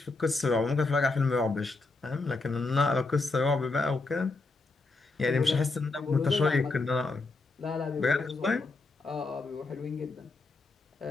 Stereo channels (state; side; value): quieter; right; 3.6 dB